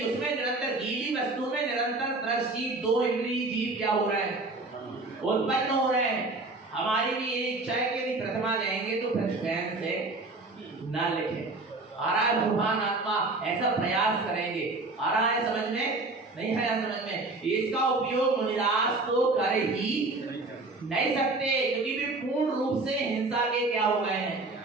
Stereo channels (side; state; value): left; quieter; 3.2 dB